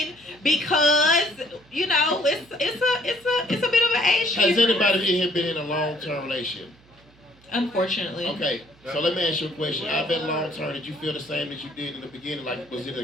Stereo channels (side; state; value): right; noise; hum, 28 dB below the sound